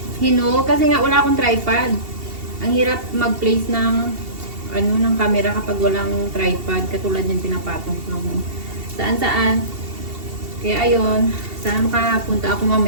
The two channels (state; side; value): late; left; 2.7 ms